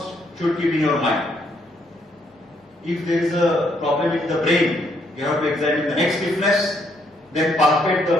should keep in your mind. If there is a problem in the brain, you have to examine the neck stiffness, then palpate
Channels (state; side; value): normal; both; correlation 0.72